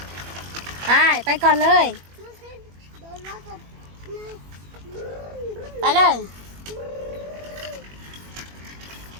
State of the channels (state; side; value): late; left; 21 ms